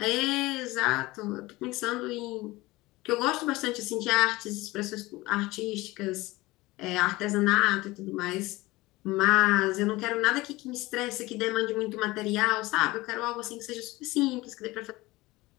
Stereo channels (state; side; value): quieter; right; 20.3 dB